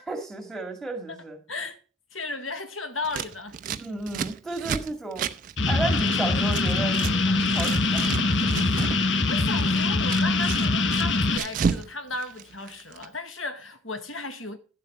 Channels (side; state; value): both; normal; correlation 0.60